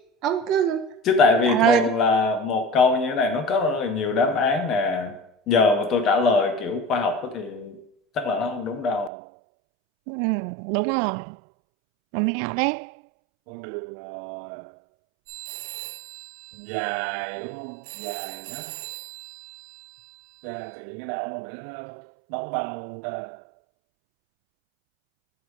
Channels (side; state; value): left; drops out; at 9.1 s